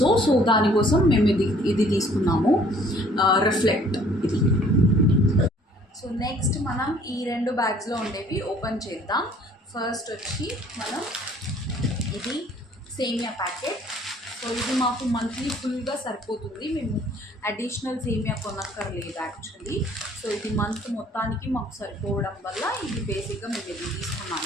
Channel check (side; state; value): both; normal; correlation 0.57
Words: so దానికోసం మేము ఇది తీసుకున్నాము, రిఫ్లెక్ట్ ఇది. సో నెక్స్ట్ మనం ఈ రెండు బ్యాగ్స్లో ఉండేవి ఓపెన్ చేద్దాం. ఫస్ట్ వచ్చి మనం ఇది సేమియా ప్యాకెట్. సో ఇది మాకు మంత్లీ ఫుల్గా సరిపోతుంది, మేము అడిషనల్ సేమియా కొనక్కర్లేదు యాక్చువల్లీ. సో ఇది మంత్ మొత్తానికి మాకు సరిపోవడం వల్ల ఇది బేసిక్గా మేము ఇది